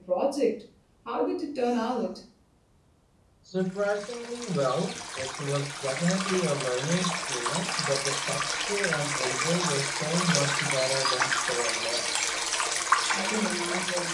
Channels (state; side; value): identical; both; correlation 1.00